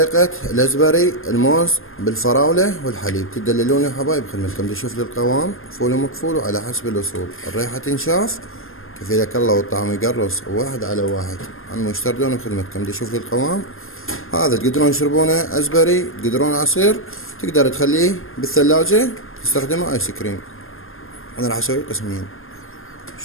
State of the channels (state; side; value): late; right; 0.60 ms